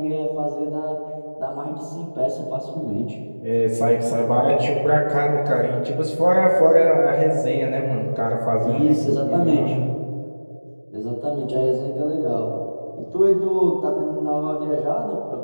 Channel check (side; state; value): both; inverted; correlation -1.00